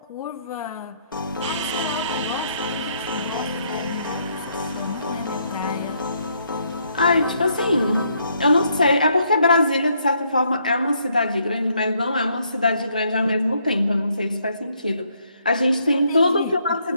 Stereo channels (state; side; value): inverted; both; correlation -0.71